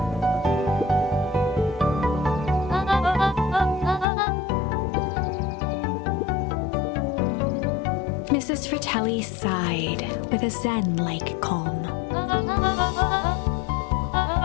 Mrs. Fratelli sighed with a zen-like calm.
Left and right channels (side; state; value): right; drops out; at 4.0 s